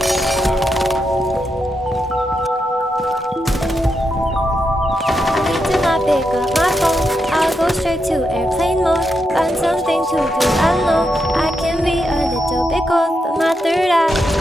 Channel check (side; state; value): both; normal; correlation 0.84